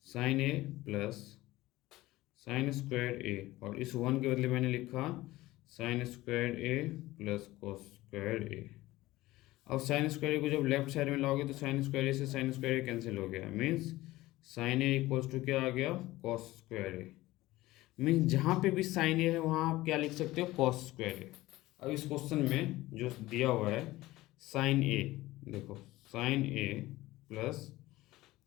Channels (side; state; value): right; quieter; 17.8 dB